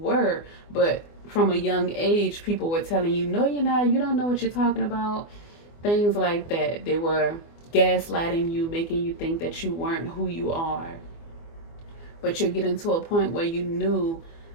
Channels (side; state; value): right; late; 24 ms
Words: but from a young age, people were telling you, no, you're not, you don't know what you're talking about. Things like that. They were gaslighting you, making you think that you weren't who you are. But you're getting to a point where you've